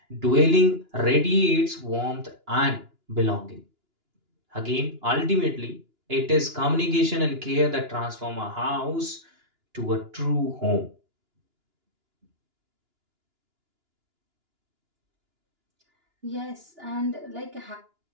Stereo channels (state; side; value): late; left; 2.9 ms